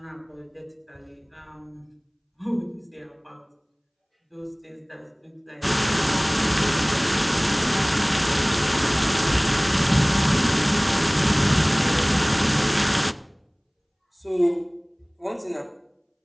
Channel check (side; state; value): both; identical; correlation 1.00